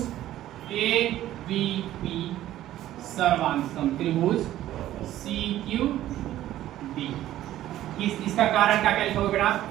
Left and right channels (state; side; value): quieter; left; 13.5 dB